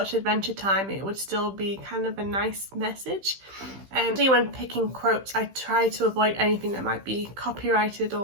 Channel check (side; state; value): left; late; 15 ms